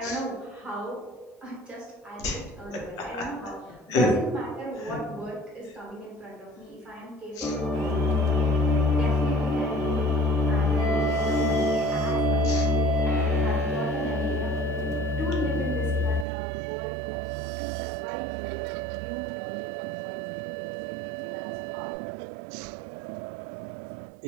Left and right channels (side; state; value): left; drops out; at 16.2 s